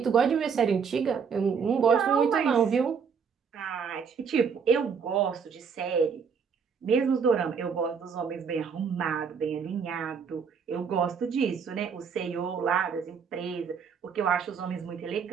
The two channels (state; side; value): quieter; left; 6.3 dB